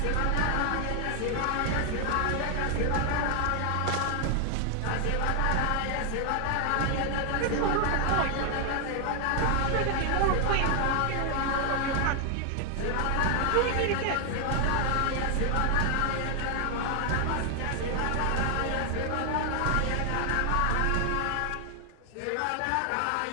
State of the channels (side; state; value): both; different; correlation 0.00